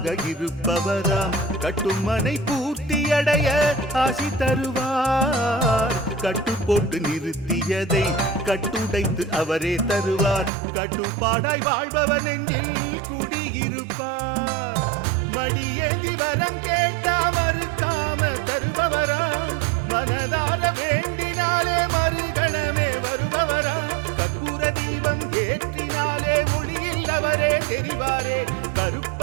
இருப்பவராம், கட்டுமனை பூர்த்தியடைய ஆசி தருவார். கட்டு போட்டு நிறுத்தியதை கட்டுடைத்து அவரே தருவார், கட்டுப்பாடாய் வாழ்பவன் நெஞ்சில் குடியிருப்பார். மடியேந்தி வரம் கேட்டா மறுக்காம தருபவராம், மனதார வேண்டினாலே மறுகணமே வருபவராம். கற்பூர தீபம் ஏற்றினாலே ஒளியில் அவரே தெரிவாரே,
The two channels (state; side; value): drops out; left; at 10.5 s